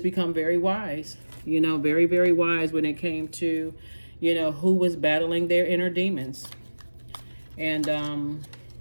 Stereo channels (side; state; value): both; inverted; correlation -1.00